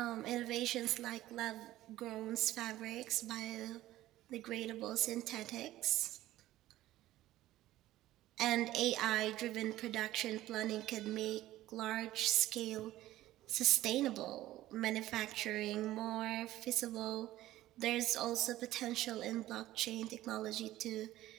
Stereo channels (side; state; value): left; quieter; 15.2 dB